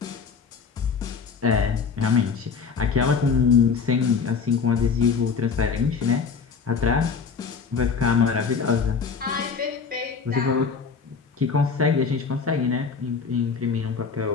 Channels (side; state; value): right; quieter; 5.5 dB